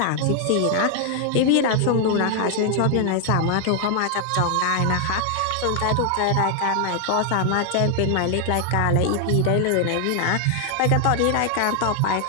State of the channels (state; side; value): different; both; correlation 0.00